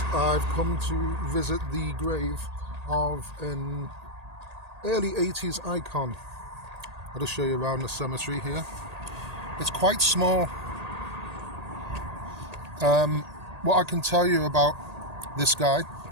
I've come to visit the grave of an early 80s icon. I'll just show you around the cemetery here. It's quite small. What I can tell you about this guy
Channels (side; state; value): left; late; 1.8 ms